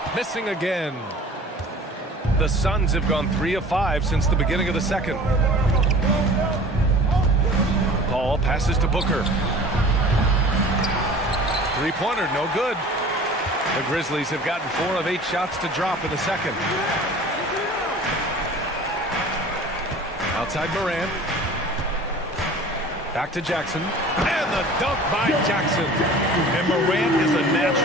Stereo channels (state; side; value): normal; both; correlation 0.43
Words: missing again. The Suns have gone 3 of 5 since the beginning of the second. Paul passes to Booker. Three-pointer, no good. The Grizzlies have gotten 4 of 8 shots to drop in the second. Outside Morant. Back to Jackson. And the dunk by Jackson. And Morant is a